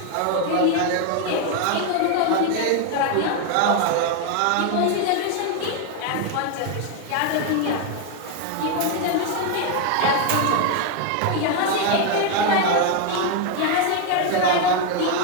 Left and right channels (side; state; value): both; different; correlation 0.01